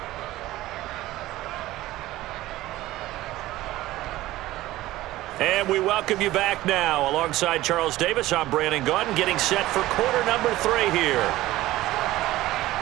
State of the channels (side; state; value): left; quieter; 16.5 dB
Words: And we welcome you back now. Alongside Charles Davis, I'm Brandon Gaudin, getting set for quarter number 3 here.